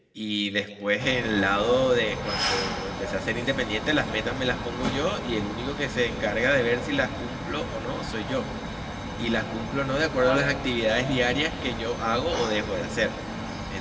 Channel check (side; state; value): both; identical; correlation 1.00